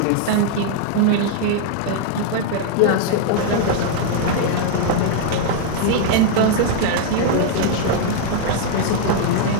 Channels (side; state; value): both; different; correlation 0.00